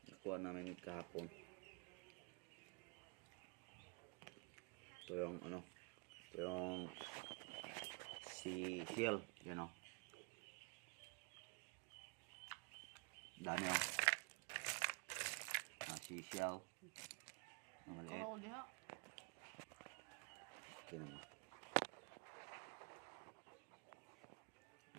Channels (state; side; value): quieter; left; 31.4 dB